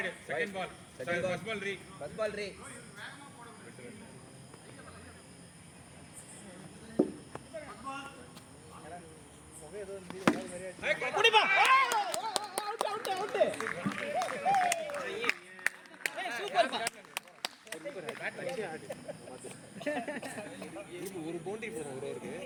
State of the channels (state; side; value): identical; both; correlation 1.00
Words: second ball. Sorry, first ball re. First ball ரே. குடிப்பா அவுட் அவுட் அவுட் சூப்பர் பா ஒரு பவுண்டரி போதும் ஒருவருக்கு.